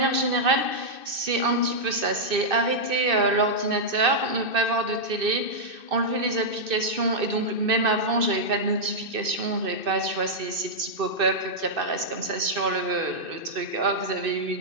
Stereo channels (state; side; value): late; left; 2.6 ms